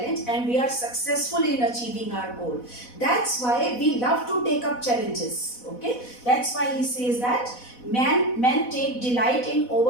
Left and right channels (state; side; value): late; right; 4.1 ms